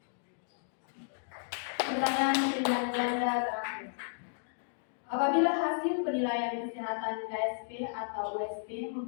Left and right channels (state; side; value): silent; right; digital silence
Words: Pertanyaan pilihan ganda terakhir. Apabila hasil penilaian kesehatan KSP atau USP